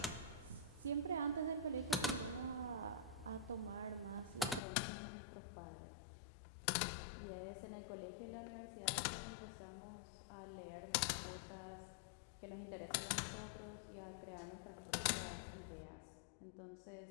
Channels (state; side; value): drops out; right; at 4.6 s